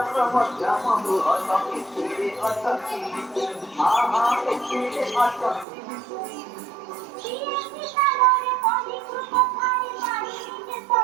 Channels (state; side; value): drops out; left; at 5.7 s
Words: ମଧ୍ୟମ ବୃହତ ଏଥିରେ ଅଟକି ହଁ ହଁ ଏଥିରେ ଅଟକି